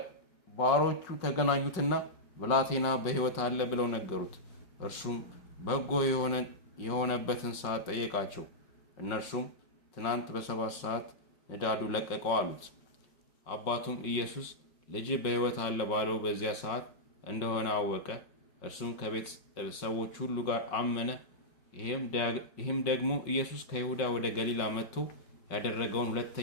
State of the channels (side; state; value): right; late; 5.3 ms